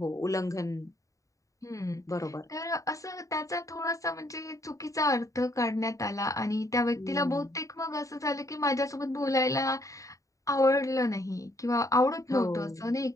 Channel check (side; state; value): right; late; 0.16 ms